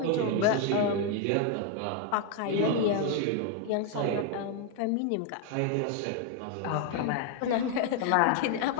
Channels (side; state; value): both; different; correlation 0.01